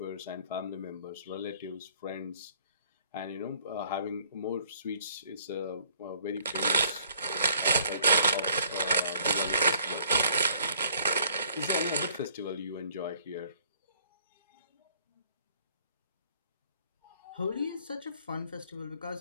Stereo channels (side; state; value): both; inverted; correlation -0.61